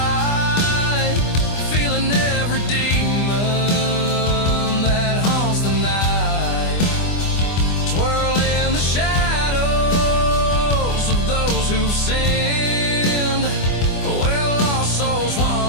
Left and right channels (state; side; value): late; right; 24 ms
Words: feeling every demon that haunts the night. Twirl